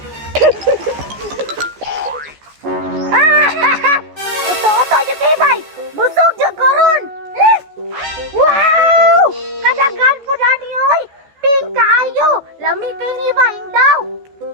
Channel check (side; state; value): left; late; 14 ms